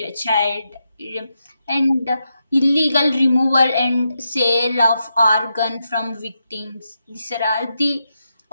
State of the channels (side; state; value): both; inverted; correlation -0.86